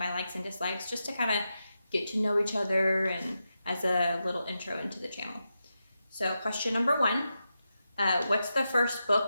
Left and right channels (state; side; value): inverted; both; correlation -0.88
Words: likes and dislikes, just to kind of get to know each other and as a little intro into the channel. So question number one, what's the first